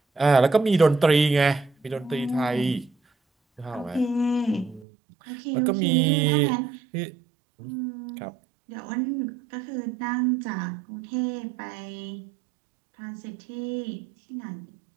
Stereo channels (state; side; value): drops out; left; at 4.9 s